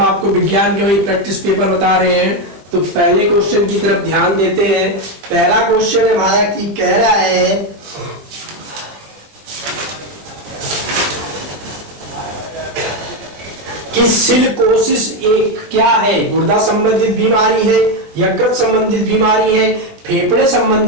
आपको विज्ञान के वही प्रैक्टिस पेपर बता रहे हैं। तो पहले क्वेश्चन की तरफ ध्यान देते हैं। पहला क्वेश्चन है हमारा कि कह रहा है कि सिलिकोसिस एक क्या है? गुर्दा संबंधित बीमारी है, यकृत संबंधित बीमारी है, फेफड़े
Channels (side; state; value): left; late; 20 ms